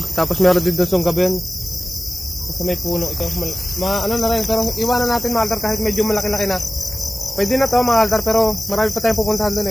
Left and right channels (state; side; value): normal; both; correlation 0.97